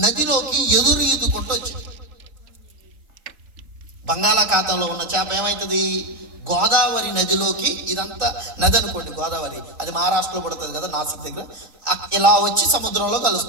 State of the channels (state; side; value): late; left; 3.8 ms